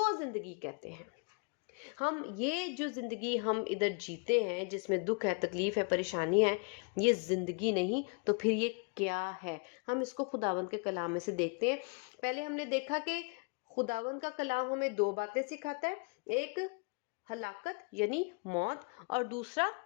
زندگی کہتے ہیں۔ ہم یہ جو زندگی ہم ادھر جیتے ہیں، جس میں دکھ ہے، تکلیف ہے، پریشانی ہے، یہ زندگی نہیں تو پھر یہ کیا ہے؟ ہم اس کو خداوند کے کلام میں سے دیکھتے ہیں۔ پہلے ہم نے دیکھا کہ خداوند کا کلام ہمیں دو باتیں سکھاتا ہے، ایک ہلاکت یعنی موت، اور دوسرا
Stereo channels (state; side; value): quieter; right; 35.2 dB